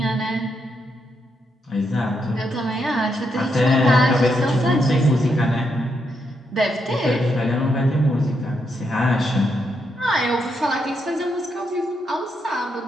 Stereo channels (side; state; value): both; normal; correlation 0.80